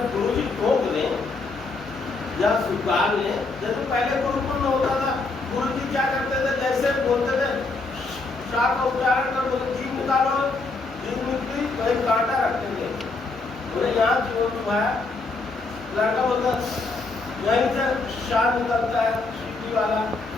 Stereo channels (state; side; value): quieter; right; 3.6 dB